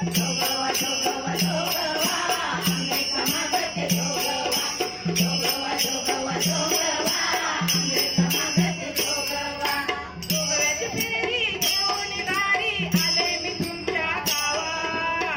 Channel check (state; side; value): identical; both; correlation 1.00